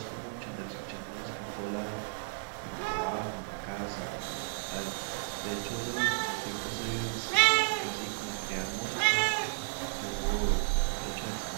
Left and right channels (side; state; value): left; silent; digital silence